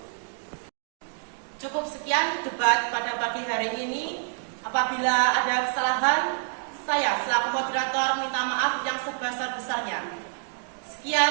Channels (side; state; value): left; silent; digital silence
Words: Cukup sekian debat pada pagi hari ini. Apabila ada kesalahan, saya selaku moderator minta maaf yang sebesar-besarnya.